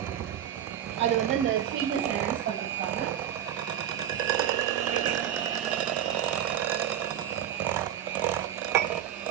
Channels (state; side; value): quieter; left; 10.4 dB